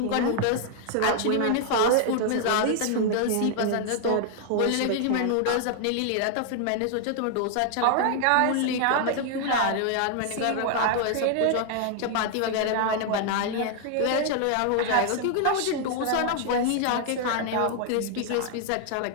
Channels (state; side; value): different; both; correlation 0.00